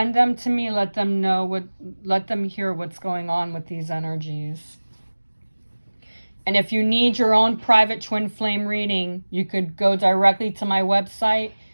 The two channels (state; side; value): inverted; both; correlation -1.00